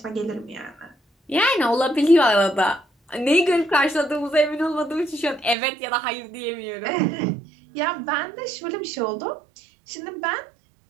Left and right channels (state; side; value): drops out; left; at 5.6 s